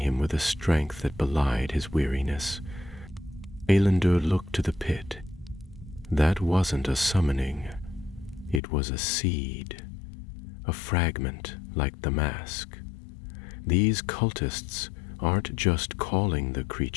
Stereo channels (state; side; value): drops out; right; at 8.6 s